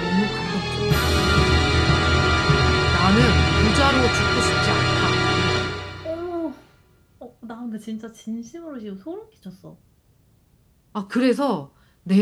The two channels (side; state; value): both; identical; correlation 1.00